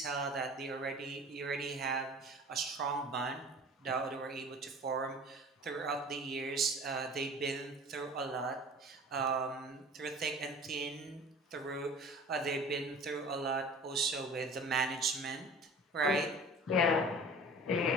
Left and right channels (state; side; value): normal; both; correlation 0.43